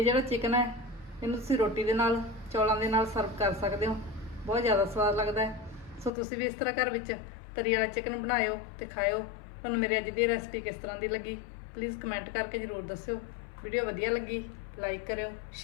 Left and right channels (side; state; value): right; drops out; at 6.1 s